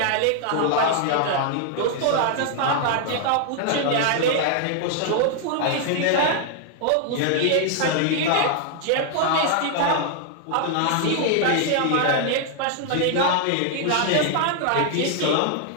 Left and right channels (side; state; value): both; different; correlation 0.00